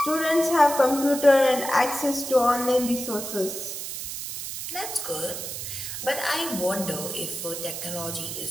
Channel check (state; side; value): noise; right; hiss, 7 dB below the sound